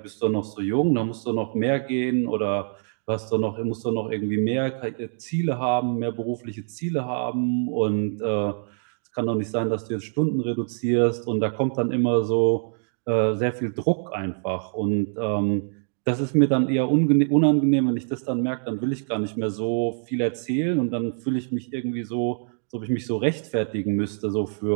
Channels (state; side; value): silent; left; 59 dB below the other